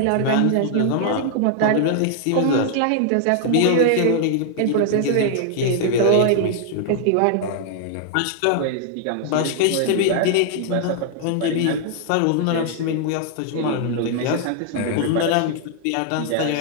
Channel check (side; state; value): both; different; correlation 0.00